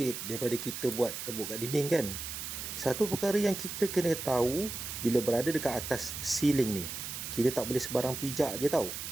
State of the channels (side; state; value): right; noise; hiss, 6 dB below the sound